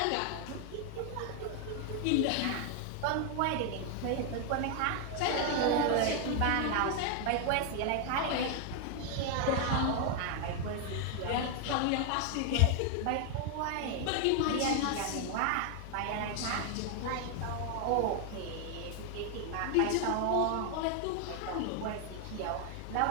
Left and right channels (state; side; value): different; both; correlation 0.00